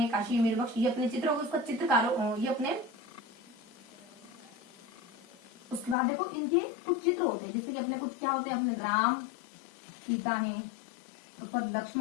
काशी, मीर बख्श, ये अपने चित्र हो गए। उसका चित्रकारों ये अपने, उसके बाद देखो इनके कुछ चित्र होते हैं, जैसे कि अपने कुछ क्या होते हैं, अपने राम सीता है, उसके बाद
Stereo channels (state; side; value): drops out; right; at 6.0 s